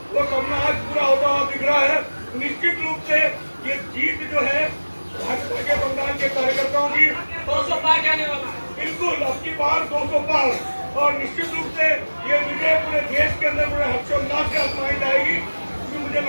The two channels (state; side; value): inverted; both; correlation -1.00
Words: वो सपना आज पूरा होता हुआ दिख रहा है। निश्चित रूप से ये जीत जो है भाजपा के बंगाल के कार्यकर्ताओं की 200 पार जाने वाला है। बिल्कुल अब की बार 200 पार, और निश्चित रूप से ये विजय पूरे देश के अंदर पूरे हर्षोल्लास के साथ मनाई जाएगी। क्योंकि मुझे